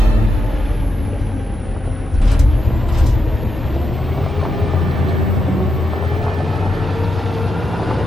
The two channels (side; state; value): both; normal; correlation 0.85